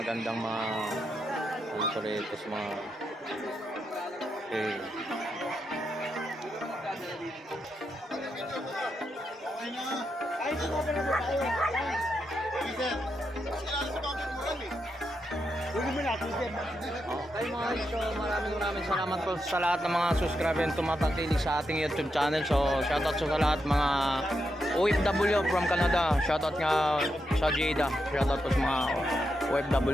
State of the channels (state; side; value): normal; both; correlation 0.84